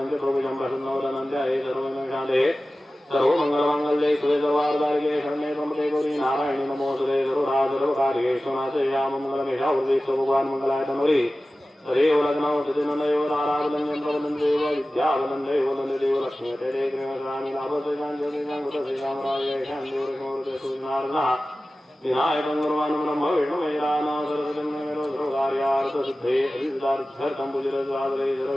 च प्रभुजं प्रसन्नवदनन्त्याये सर्वविघ्नविनाशे सर्वमङ्गलमाङ्गल्ये शिवे सर्वार्धारिके शरण्ये त्र्यम्बके गौरी नारायणी नमोऽस्तुते सर्वकार्येषु नाशयामि मङ्गलमेषावृत्तिस्तु भगवान् मङ्गलाय तन्वरी हरेव लग्नौ सतिनन्दयो नारायणं प्रवदन्देव विद्यावदन्देव वदन्देव लक्ष्मी तेरे कृष्णानि लाभसेनाञ्जलिनाङ्गुतसेनामराय शान्तिवरसमृते सूर्यनारायणः विनायकं गुरुवान् ब्रह्म विष्णुमेराना सरस्वतीं सर्वकार्यार्थसिद्धे अभिसिद्धार्थं पूजितसादरे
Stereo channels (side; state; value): both; normal; correlation 0.96